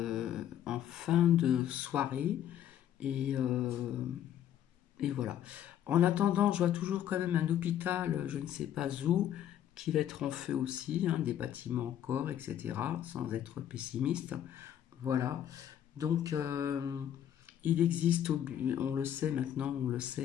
fin de soirée, et, euh, et voilà. En attendant, je vois toujours quand même un hôpital, je ne sais pas où, qui va être en feu aussi, hein, des bâtiments encore, etc., sans être pessimiste. Voilà. Donc, il existe, on le sait maintenant, on le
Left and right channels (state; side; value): quieter; right; 10.6 dB